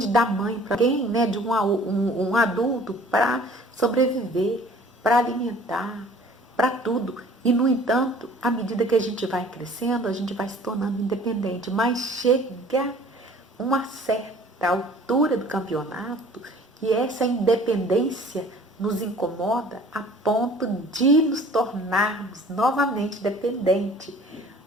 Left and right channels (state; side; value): normal; both; correlation 0.50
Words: da mãe, para alguém, né, de um adulto para sobreviver, para alimentar, para tudo. E, no entanto, à medida que a gente vai crescendo, a gente vai se tornando independente. Mas chega uma certa altura do campeonato que essa independência nos incomoda a ponto de nos tornarmos novamente dependentes.